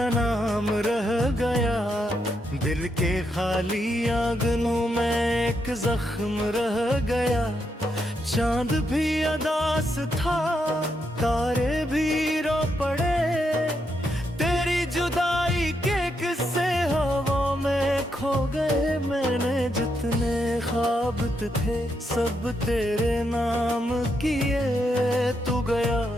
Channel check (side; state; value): both; normal; correlation 0.80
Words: नाम रह गया, दिल के खाली आंगनों में एक जख्म रह गया। चांद भी अदास था, तारे भी रो पड़े, तेरी जुदाई के किस्से हवा में खो गए। मैंने जितने ख्वाब थे सब तेरे नाम किए, तू गया